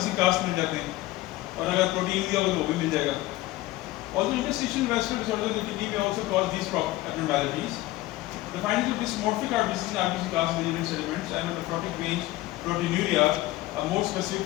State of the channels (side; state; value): right; quieter; 17.5 dB